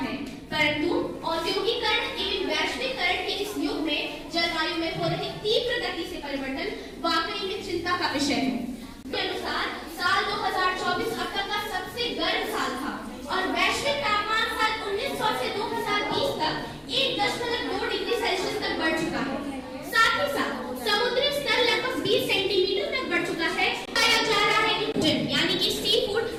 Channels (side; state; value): both; identical; correlation 1.00